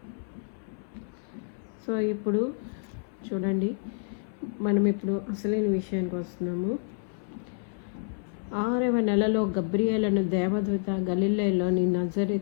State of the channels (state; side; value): silent; right; 59 dB below the other